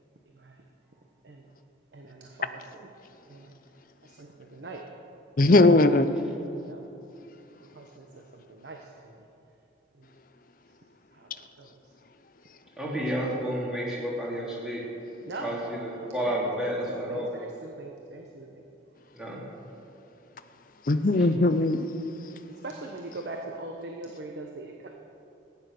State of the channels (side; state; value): both; normal; correlation 0.49